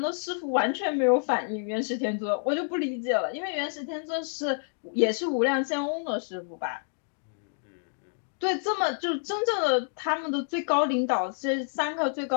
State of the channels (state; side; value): silent; right; digital silence